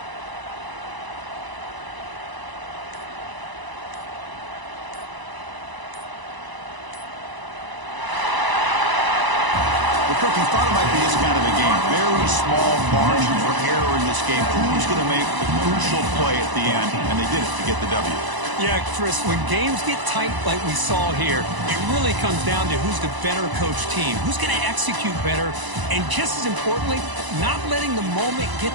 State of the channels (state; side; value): late; left; 1.0 ms